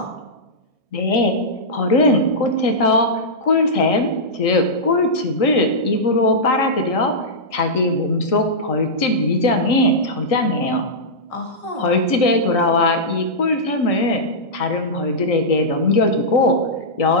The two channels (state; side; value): late; right; 1.6 ms